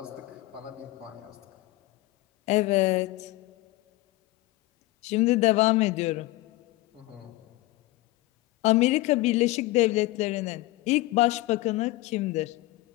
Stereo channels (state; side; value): quieter; right; 19.1 dB